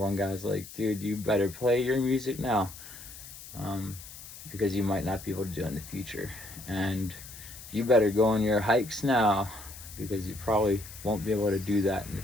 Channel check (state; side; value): noise; left; hiss, 15 dB below the sound